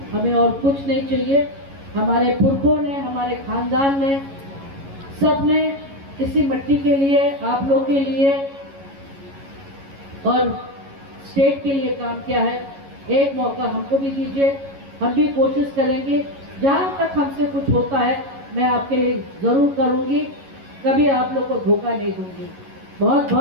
हमें और कुछ नहीं चाहिए। हमारे पुरखों ने, हमारे खानदान ने, सब ने इसी मिट्टी के लिए, आप लोग के लिए और स्टेट के लिए काम किया है। एक मौका हमको भी दीजिए, हम भी कोशिश करेंगे। जहां तक हमसे कुछ होता है मैं आपके लिए जरूर करूंगी, कभी आप लोग को धोखा नहीं दूंगी। बहुत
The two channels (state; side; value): late; left; 11 ms